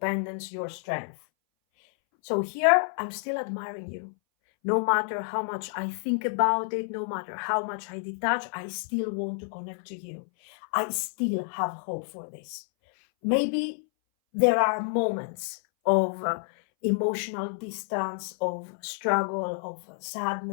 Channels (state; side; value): silent; right; 59 dB below the other